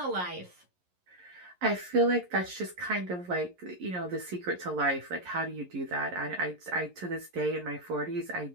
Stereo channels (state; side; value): late; left; 11 ms